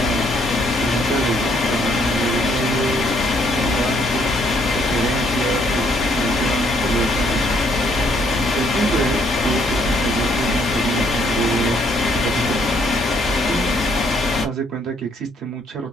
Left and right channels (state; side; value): normal; both; correlation 0.68